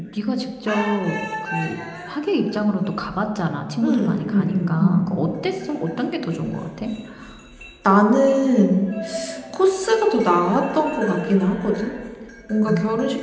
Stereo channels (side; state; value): both; identical; correlation 1.00